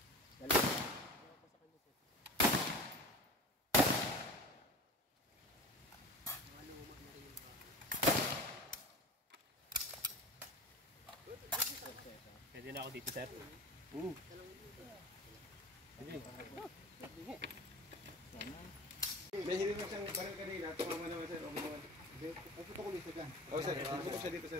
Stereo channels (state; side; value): normal; both; correlation 0.35